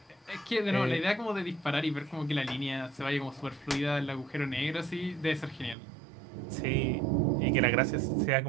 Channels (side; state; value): left; drops out; at 5.8 s